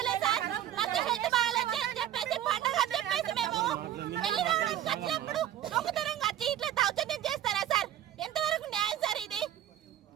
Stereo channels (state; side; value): quieter; left; 11.6 dB